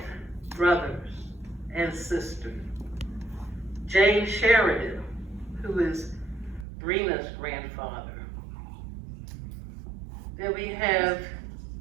brothers and sisters. James Sheridan, who is Brena's grandfather. Then we have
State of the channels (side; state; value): left; drops out; at 6.7 s